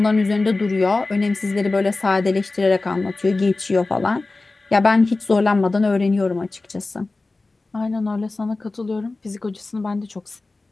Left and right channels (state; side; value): quieter; right; 3.3 dB